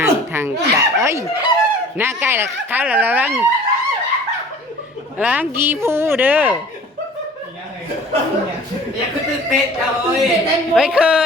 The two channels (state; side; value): normal; both; correlation 0.47